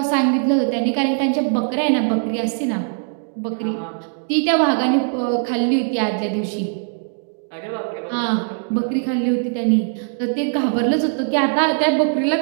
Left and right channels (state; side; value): silent; left; 60 dB below the other